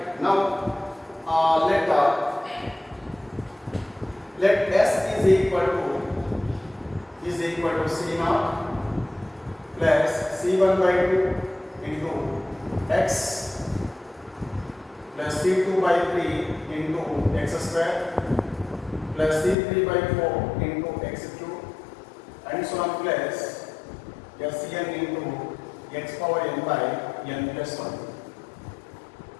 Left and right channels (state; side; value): drops out; right; at 19.6 s